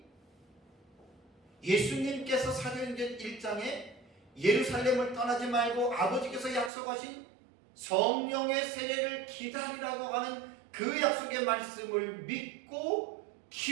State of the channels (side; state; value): left; drops out; at 6.7 s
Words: 예수님께서 사도행전 1장에 예루살렘을 떠나지 말고 아버지께서 약속하신 성령의 세례를 기다리라고 하는 그 약속의 말씀을 믿고